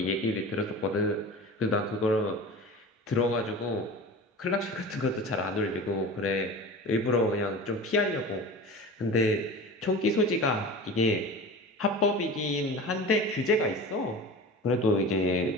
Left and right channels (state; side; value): normal; both; correlation 0.34